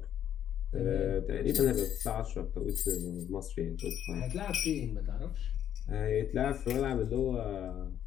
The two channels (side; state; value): right; quieter; 10.1 dB